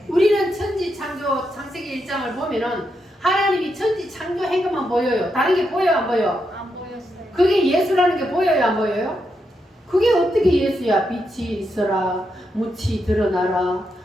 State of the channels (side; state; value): both; normal; correlation 0.83